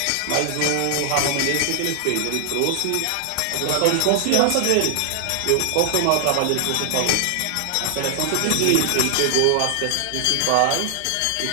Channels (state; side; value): different; both; correlation 0.00